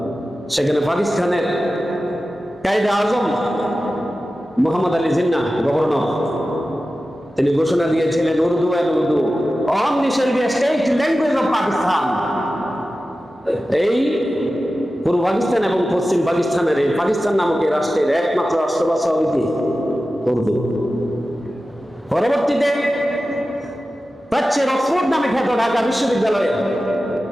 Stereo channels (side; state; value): both; normal; correlation 0.94